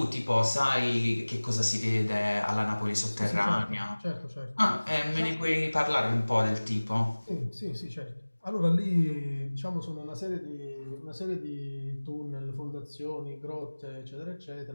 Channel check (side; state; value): both; inverted; correlation -1.00